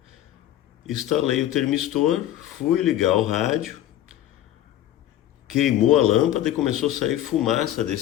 Instalei o termistor, fui ligar o rádio, queimou a lâmpada e começou a sair fumaça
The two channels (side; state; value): right; quieter; 12.5 dB